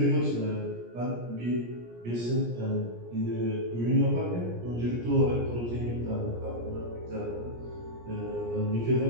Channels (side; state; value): left; late; 17 ms